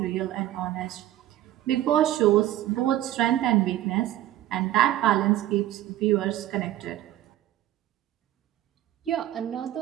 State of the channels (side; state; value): left; quieter; 13.5 dB